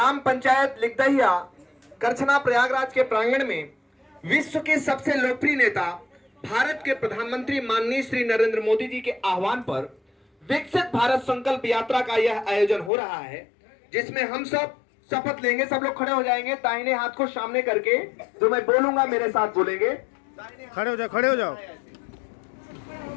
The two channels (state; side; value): drops out; right; at 12.9 s